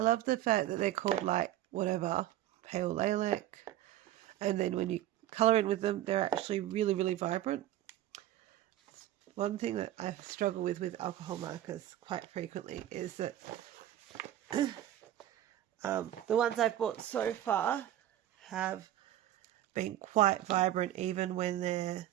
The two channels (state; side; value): quieter; left; 12.9 dB